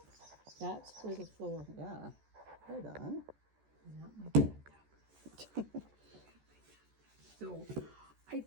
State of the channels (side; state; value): left; late; 14 ms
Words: That's for the floor. Yeah. Right on. Not my bathtub. So, I